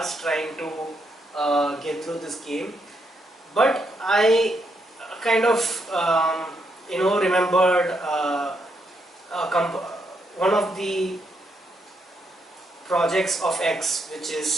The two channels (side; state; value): both; normal; correlation 0.78